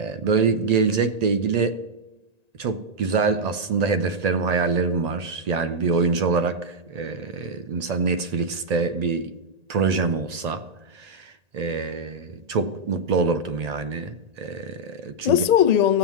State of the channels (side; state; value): left; late; 1.8 ms